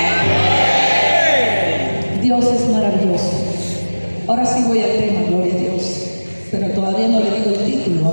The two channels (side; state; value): both; inverted; correlation -1.00